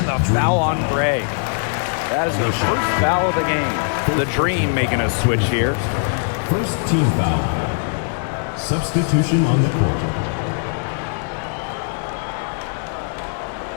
the foul on Gray. That is the first foul of the game. The Dream making a switch here. First team foul. Substitution on the court.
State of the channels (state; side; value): silent; right; digital silence